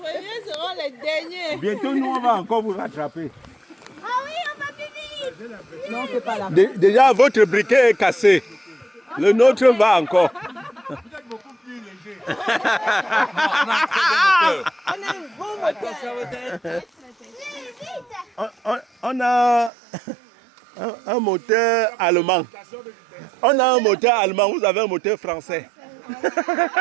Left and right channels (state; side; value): drops out; left; at 19.7 s